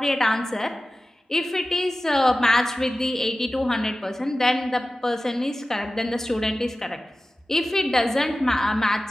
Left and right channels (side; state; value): both; normal; correlation 0.95